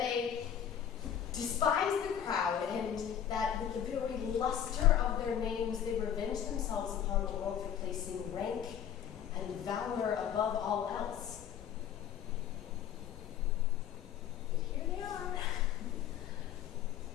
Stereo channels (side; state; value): right; quieter; 9.3 dB